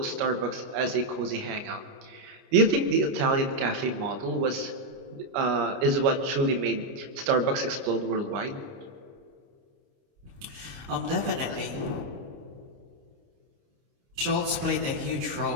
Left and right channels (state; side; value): late; left; 29 ms